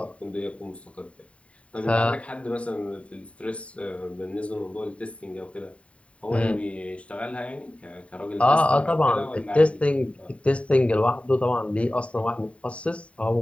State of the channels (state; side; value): late; right; 0.063 ms